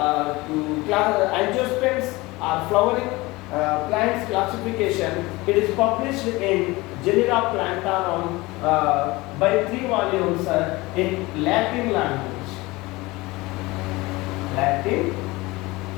angiosperms or flowering plants classification, it is published in Genera Plantarum by 3 volumes in Latin language.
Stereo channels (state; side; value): quieter; right; 21.7 dB